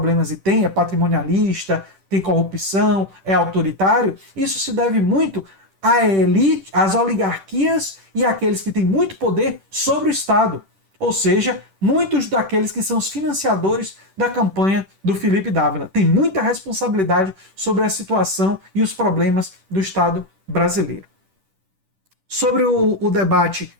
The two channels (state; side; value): late; left; 10 ms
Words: e tem, é patrimonialista, tem corrupção, é autoritário, isso se deve muito à elite, às oligarquias e àqueles que têm muito poder sobre o Estado. Ou seja, muitos daqueles que são os financiadores da campanha do Felipe Dávila. Tem muita responsabilidade sobre a situação e os problemas do Estado brasileiro. Sobre o debate